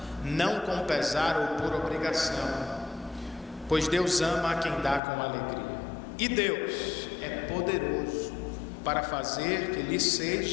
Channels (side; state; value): right; drops out; at 5.0 s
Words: não com pesar ou por obrigação, pois Deus ama a quem dá com alegria. E Deus é poderoso para fazer que lhe